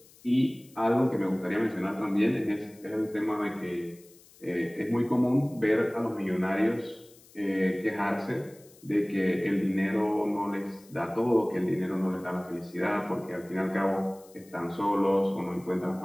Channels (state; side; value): noise; left; hiss, 26 dB below the sound